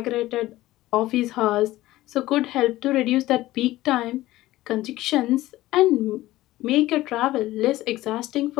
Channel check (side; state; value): right; quieter; 16.6 dB